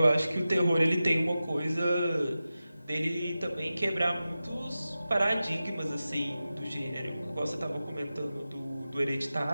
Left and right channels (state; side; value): inverted; both; correlation -0.94